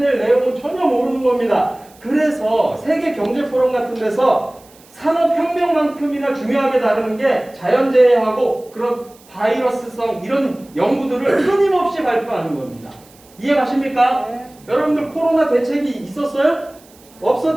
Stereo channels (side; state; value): right; noise; hiss, 27 dB below the sound